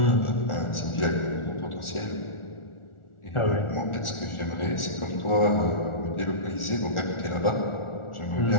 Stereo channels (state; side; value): late; right; 1.4 ms